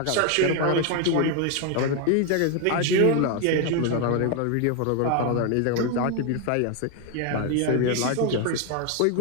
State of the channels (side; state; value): both; different; correlation 0.01